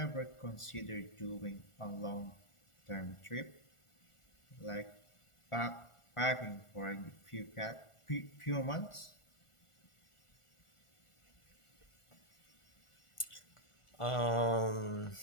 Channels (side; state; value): right; late; 1.4 ms